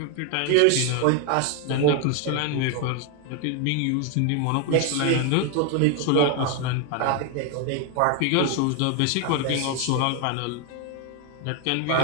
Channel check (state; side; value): different; both; correlation 0.01